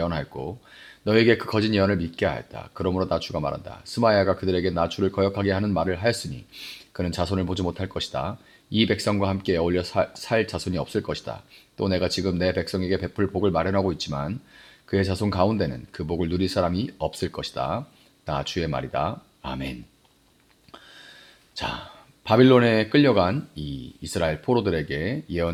너에게 그 거짓 예언을 믿게 하였다. 그러므로 나 주가 말한다. 스마야가 그들에게 나 주를 거역하게 하는 말을 하였으니 그는 자손을 보지 못할 것이다. 이 백성과 함께 어울려 살 자손이 없을 것이다. 또 내가 지금 내 백성에게 베풀 복을 마련하고 있지만 그의 자손 가운데는 그 복을 누릴 사람이 없을 것이다. 나 주의 말이다. 아멘. 자, 바빌론에 끌려간 이 이스라엘 포로들에게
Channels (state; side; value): identical; both; correlation 1.00